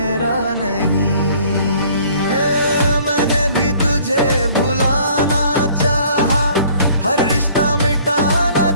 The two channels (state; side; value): inverted; both; correlation -0.56